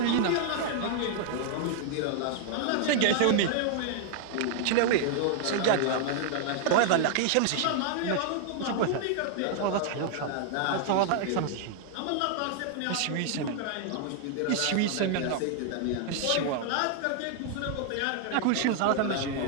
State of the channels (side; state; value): both; different; correlation 0.00